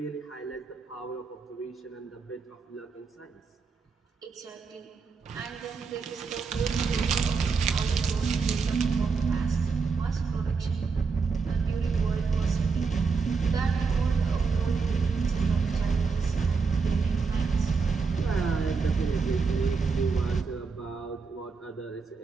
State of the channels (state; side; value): quieter; left; 4.9 dB